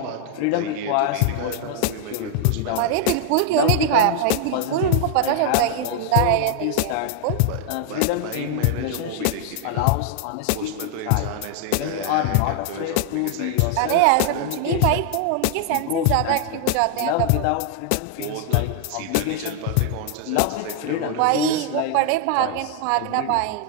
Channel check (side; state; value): both; different; correlation 0.00